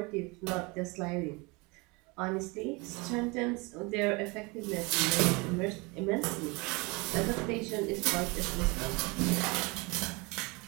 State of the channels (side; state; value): left; quieter; 27.1 dB